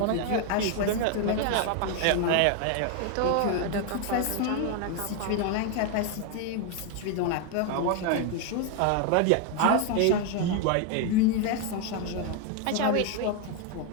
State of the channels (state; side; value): different; both; correlation 0.01